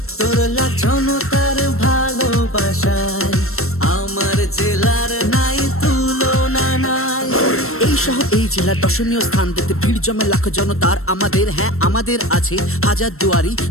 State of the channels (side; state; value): right; late; 0.63 ms